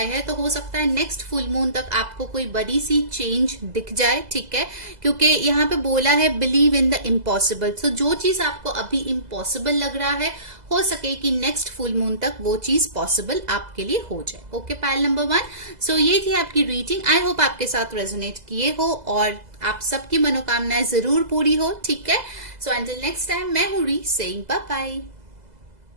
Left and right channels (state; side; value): late; left; 2.0 ms